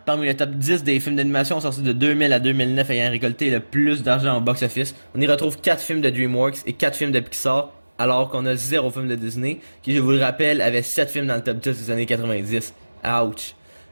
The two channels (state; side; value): inverted; both; correlation -1.00